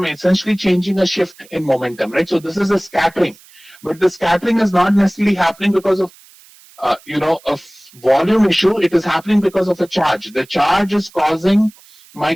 essentially changing a shift in momentum, right? So this is a scattering. But the scattering is not necessarily happening because of a volume issue. It is happening because of a charge. The charge is causing my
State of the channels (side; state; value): right; noise; hiss, 26 dB below the sound